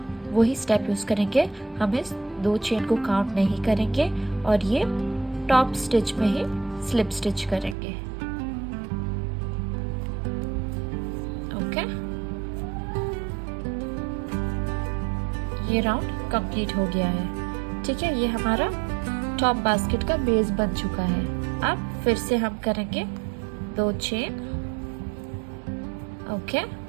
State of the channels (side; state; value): left; drops out; at 7.8 s